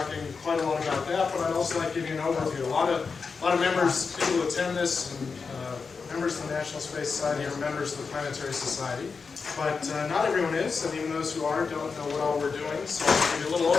quite a lot about that, but I'd also like to give you an overview. A lot of members, people who attend this, and members of the National Space Society are members of the Planetary Society. But not everyone is, and even those who are don't know what all we're doing. So I'll give you a little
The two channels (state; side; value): quieter; right; 5.0 dB